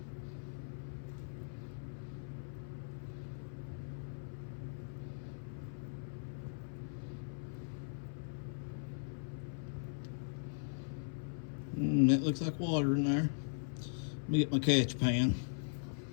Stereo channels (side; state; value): right; silent; 52 dB below the other